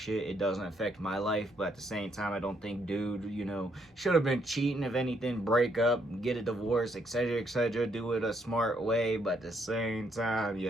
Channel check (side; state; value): both; normal; correlation 0.73